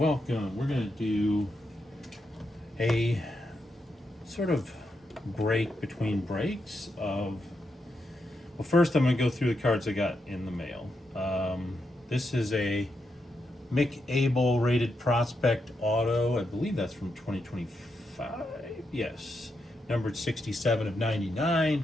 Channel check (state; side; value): normal; both; correlation 0.84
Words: welcome. We're going to do a sort of break between breaks of. Well, first I'm going to go through the cards I got in the mail. This is a Mick Abel rated prospect auto. I believe that's from 2025. Yes, numbered 67 of